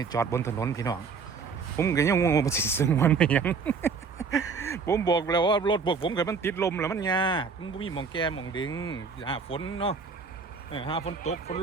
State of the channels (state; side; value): quieter; left; 5.2 dB